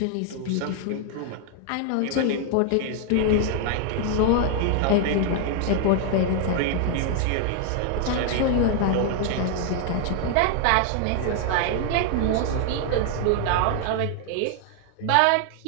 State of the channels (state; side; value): different; both; correlation 0.00